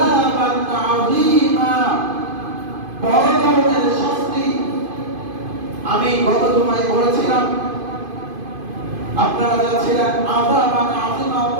আযীমা, বড় ধরনের শাস্তি। আমি গত জুমায় বলেছিলাম, আপনারা যাচ্ছিলেন আযাবান আযীমা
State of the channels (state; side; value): late; left; 2.5 ms